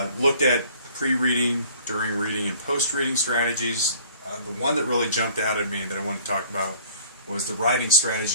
Looked at pre-reading, during reading, and post-reading strategies. The one that really jumped out at me that I want to talk about was the writing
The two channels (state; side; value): inverted; both; correlation -0.53